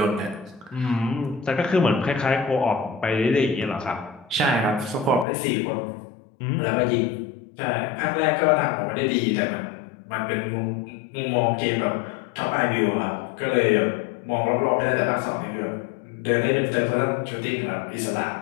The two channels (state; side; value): drops out; right; at 5.2 s